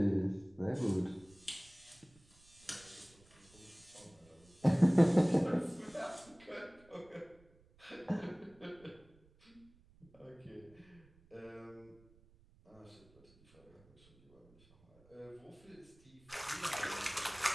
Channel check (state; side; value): noise; right; rumble, 28 dB below the sound